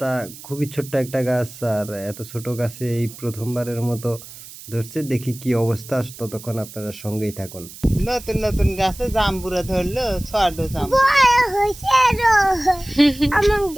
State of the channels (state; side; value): noise; right; hiss, 16 dB below the sound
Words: খুবই ছোট্ট একটা গাছ আর এত ছোট গাছে এই ১ম বারের মতো ধরছে। দেখি কী অবস্থা। ততক্ষণ আপনারা সঙ্গেই থাকুন। নতুন নতুন গাছে জাম্বুরা ধরলো ছোট জাম্বুরা